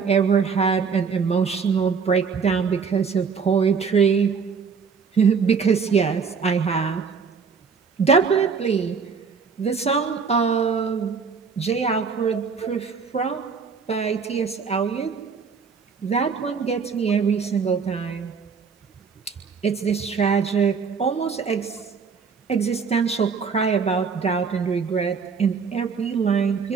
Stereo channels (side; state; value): left; quieter; 5.7 dB